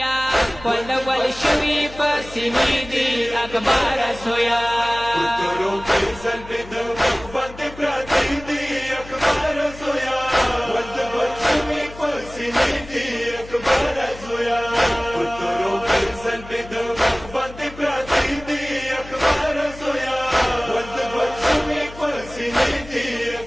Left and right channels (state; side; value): noise; left; hum, 17 dB below the sound